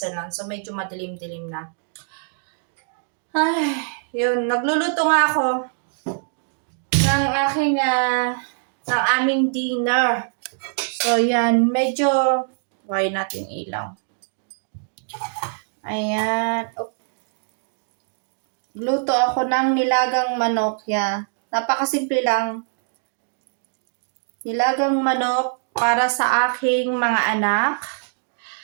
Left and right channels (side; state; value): left; silent; digital silence